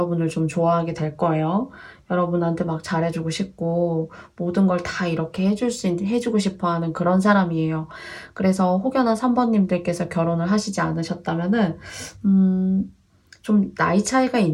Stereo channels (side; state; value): both; identical; correlation 1.00